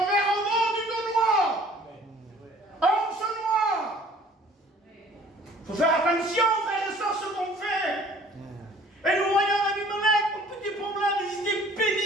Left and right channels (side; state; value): both; normal; correlation 0.53